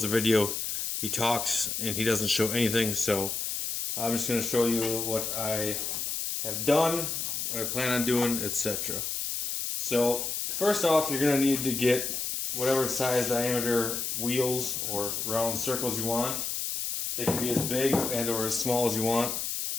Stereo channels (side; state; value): left; noise; hiss, 2 dB below the sound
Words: the video, he talks and he doesn't show anything. So I'm just going to show you what I have done, what I plan on doing, etc. So first off, you're going to need to get whatever size diameter wheels or round circles you want. They can be as big and or as small as you want.